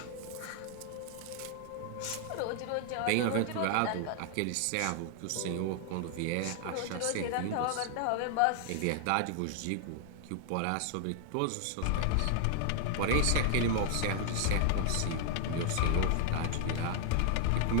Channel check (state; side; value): different; both; correlation -0.01